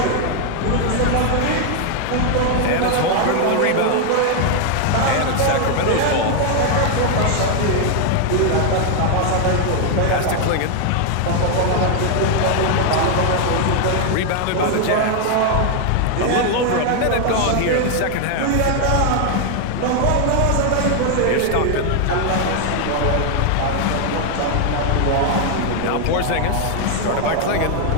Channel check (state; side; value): different; both; correlation 0.00